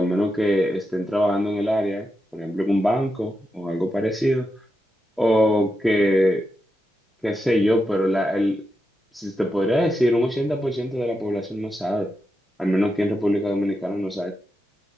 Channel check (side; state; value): both; normal; correlation 0.87